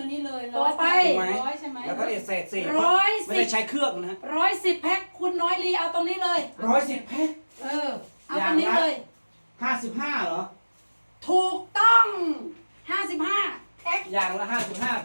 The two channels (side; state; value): both; inverted; correlation -1.00